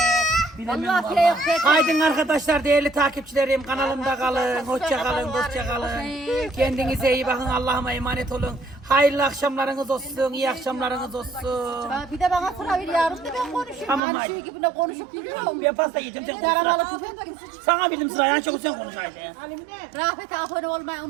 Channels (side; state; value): left; drops out; at 14.0 s